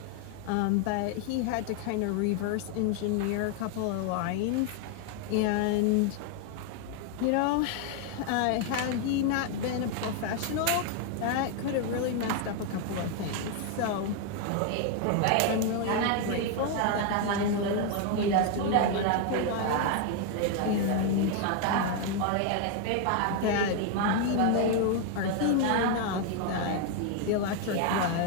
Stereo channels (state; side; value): different; both; correlation 0.00